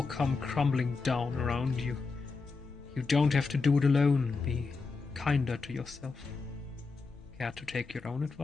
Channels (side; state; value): right; quieter; 4.3 dB